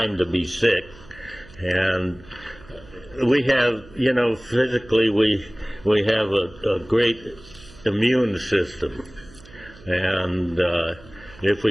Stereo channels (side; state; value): right; noise; hum, 22 dB below the sound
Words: to be sick. And we have, physically we have a great immune system, and if